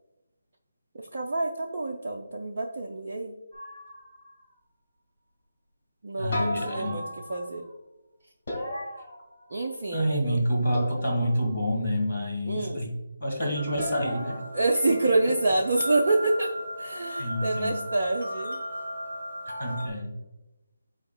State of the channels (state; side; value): inverted; both; correlation -0.88